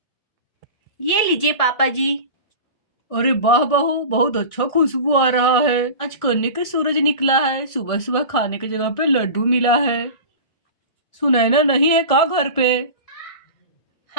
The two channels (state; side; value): late; right; 1.6 ms